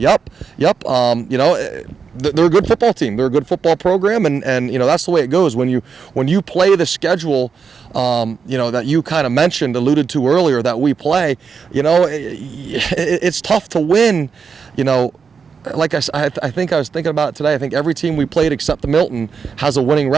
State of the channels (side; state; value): left; quieter; 5.8 dB